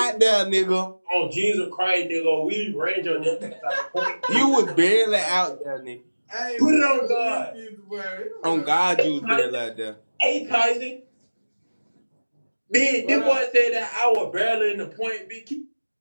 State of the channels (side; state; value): both; inverted; correlation -1.00